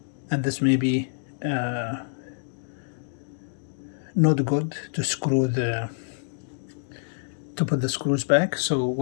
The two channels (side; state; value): right; silent; digital silence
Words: and this may be not good to screw to put the screws back. So